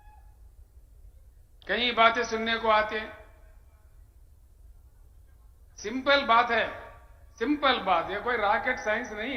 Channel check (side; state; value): both; identical; correlation 1.00